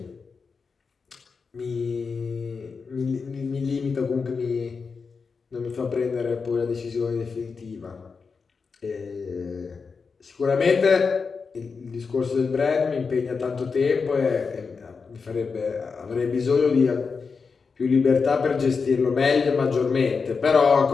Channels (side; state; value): right; quieter; 5.1 dB